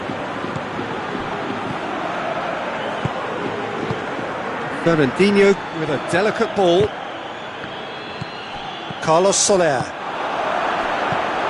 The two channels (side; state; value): both; identical; correlation 1.00